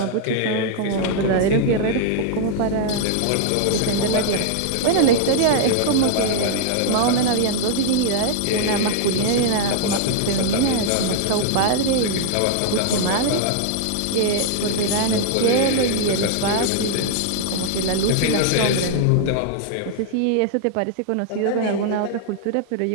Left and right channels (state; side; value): different; both; correlation 0.00